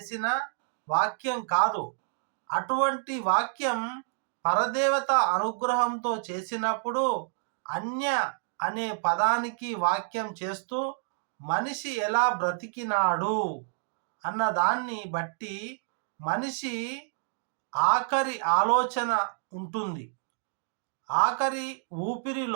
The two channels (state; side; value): silent; left; digital silence